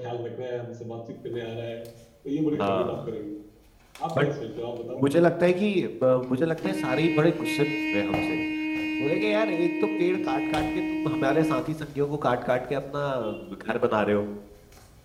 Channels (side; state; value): both; identical; correlation 1.00